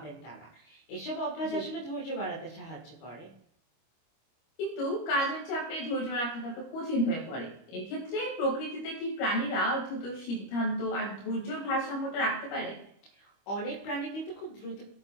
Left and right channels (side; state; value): right; late; 25 ms